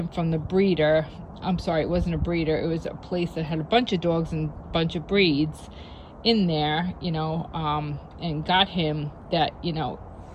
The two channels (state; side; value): identical; both; correlation 1.00